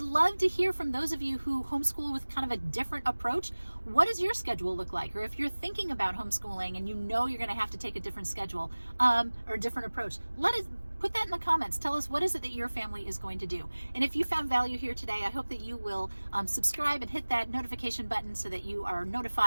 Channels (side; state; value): both; inverted; correlation -1.00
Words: love to hear from those of you who homeschool with kind of a different approach. What does your schedule look like? Or if you're thinking about homeschooling and you know you're going to have to take a different schedule or a different approach, put that in the comments. Tell us, what is it that your family is going to do? And if you found value here today, I hope that you will subscribe and hit that notification button so that you are